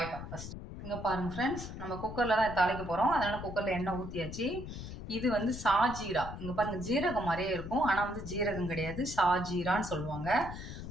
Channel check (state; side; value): noise; left; rumble, 9 dB below the sound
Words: ஃபர்ஸ்ட். இங்கே பாருங்க ஃப்ரெண்ட்ஸ், நம்ம குக்கரில் தான் தாளிக்க போகிறோம். அதனால் குக்கரில் எண்ணெய் ஊற்றியாச்சு. இது வந்து சாஜீரா. இங்கே பாருங்க, ஜீரகம் மாதிரியே இருக்கும், ஆனால் வந்து ஜீரகம் கிடையாது, சாஜீரான்னு சொல்லுவாங்க.